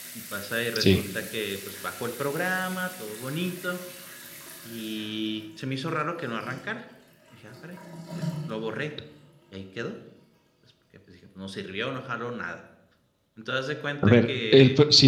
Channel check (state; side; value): identical; both; correlation 1.00